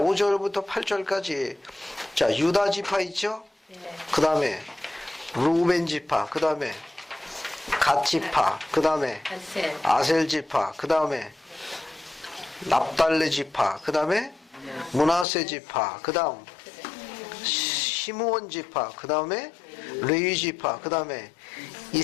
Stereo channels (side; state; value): right; drops out; at 15.2 s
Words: 8절까지 자, 유다 지파 있죠? 그 다음에 루벤 지파, 그 다음에 갓 지파, 그 다음에 아셀 지파, 그 다음에 납달레 지파, 그 다음에 므낫세 지파, 그 다음 시므온 지파, 그 다음에 레위 지파, 그 다음에